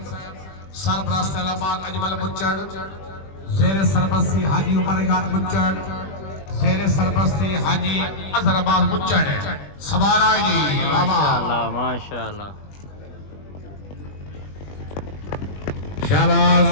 سربراہ علامات اجمل مچڑ، زیر سربستی حاجی عمر یاد مچڑ، زیر سربستی حاجی اظہر عباس مچڑ، سوار آئے جی بابا، ماشاءاللہ ماشاءاللہ شہباز،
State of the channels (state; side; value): late; right; 20 ms